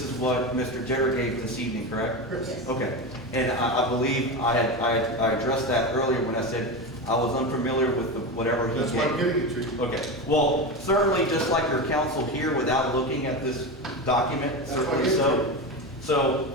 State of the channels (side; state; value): both; normal; correlation 0.20